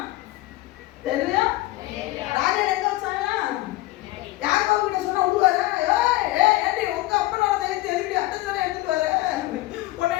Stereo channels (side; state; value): right; quieter; 18.0 dB